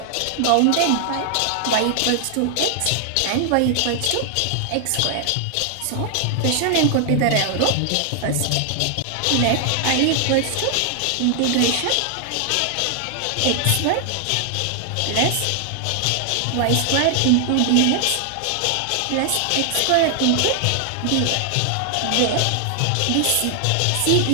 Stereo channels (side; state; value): both; different; correlation 0.00